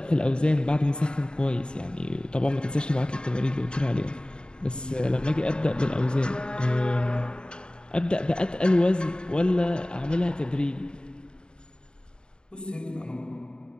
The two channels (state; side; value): late; right; 0.050 ms